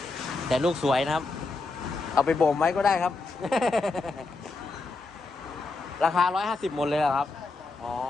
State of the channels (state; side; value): quieter; right; 3.6 dB